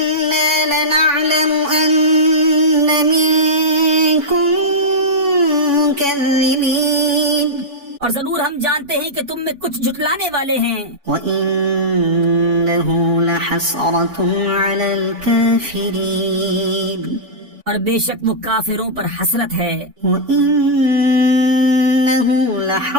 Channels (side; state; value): left; late; 3.5 ms